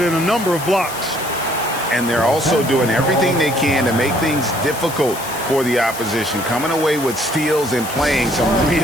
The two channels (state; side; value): noise; left; hiss, 11 dB below the sound